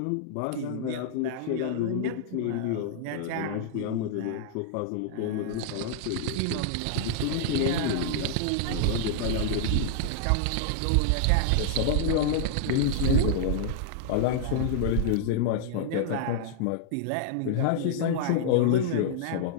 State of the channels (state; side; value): different; both; correlation -0.01